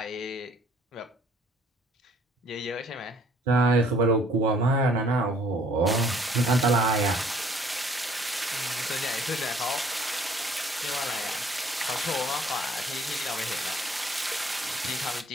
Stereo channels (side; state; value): both; normal; correlation 0.59